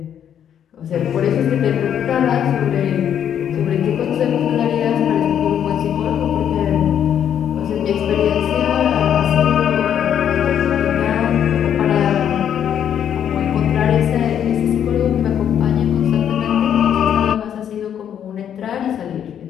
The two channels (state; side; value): quieter; right; 9.3 dB